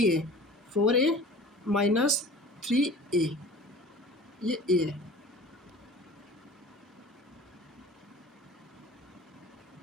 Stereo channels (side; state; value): both; normal; correlation 0.42